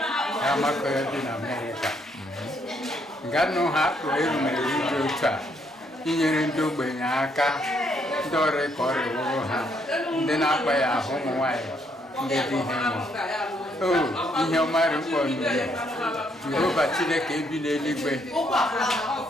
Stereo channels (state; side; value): normal; both; correlation 0.71